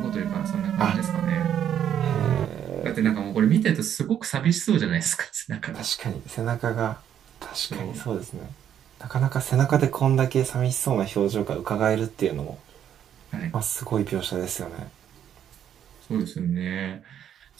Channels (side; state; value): left; quieter; 9.7 dB